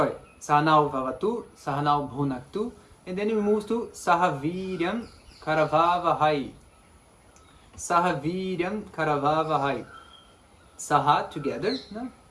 Sahana bhunaktu, and then we move to saha vīryaṃ karavāvahai. Saha vīryaṃ karavāvahai. Saha, together, no?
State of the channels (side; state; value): both; identical; correlation 1.00